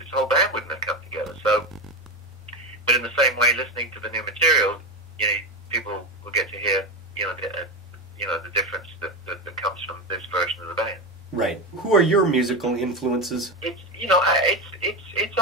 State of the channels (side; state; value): both; normal; correlation 0.18